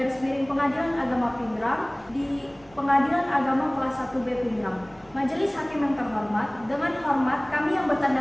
Pengadilan Agama Pindrang di Pengadilan Agama Kelas 1B Pindrang. Majelis Hakim yang terhormat, dengan hormat kami yang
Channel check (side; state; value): right; noise; rumble, 27 dB below the sound